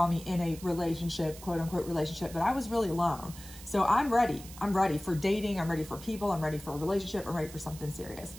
me in a relationship, quote unquote relationship, but I was really alone. So I'm ready. I'm ready for dating. I'm ready for people. I'm ready for a relationship. I'm ready for something serious.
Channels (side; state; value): right; noise; hiss, 16 dB below the sound